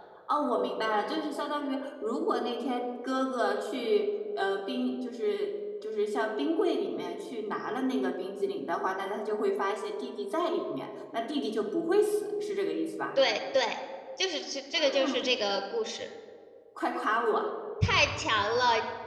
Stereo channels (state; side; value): identical; both; correlation 1.00